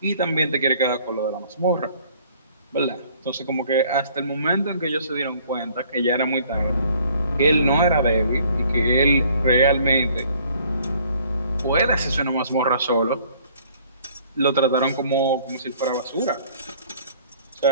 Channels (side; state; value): both; inverted; correlation -0.58